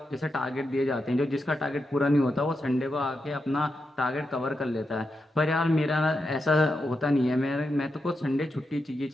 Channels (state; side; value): normal; both; correlation 0.86